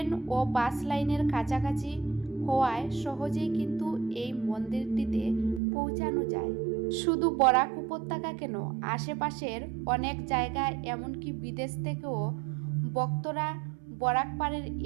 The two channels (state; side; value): drops out; left; at 5.6 s